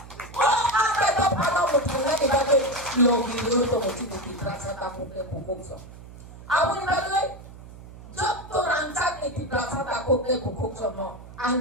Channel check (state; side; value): noise; right; hum, 17 dB below the sound